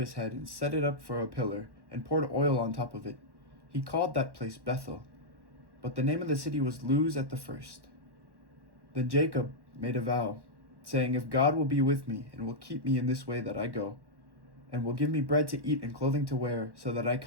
head and set it up for a pillar, and poured oil on top of it. He called that place Bethel, but the name of the city was Luz at the first. Then Jacob made a vow, saying, "If God will be with me, and will keep me in this way that I go, and will give me bread to eat and clothing to wear, so that I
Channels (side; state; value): left; late; 1.1 ms